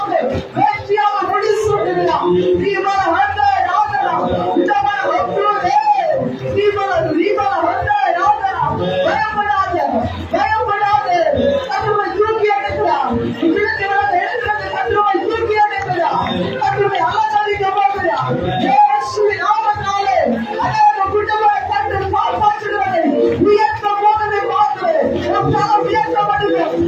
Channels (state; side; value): identical; both; correlation 1.00